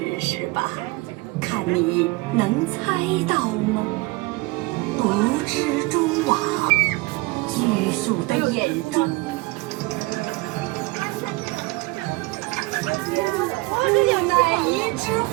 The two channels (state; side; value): quieter; left; 23.2 dB